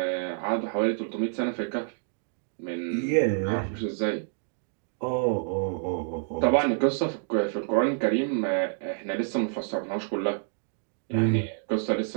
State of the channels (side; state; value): left; silent; digital silence